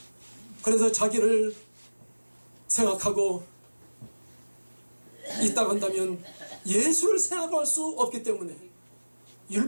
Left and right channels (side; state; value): both; inverted; correlation -1.00